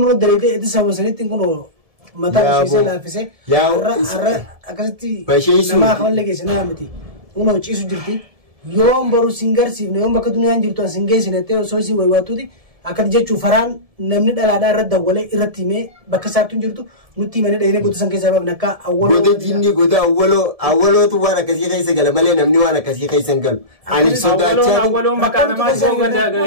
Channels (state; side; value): late; left; 1.7 ms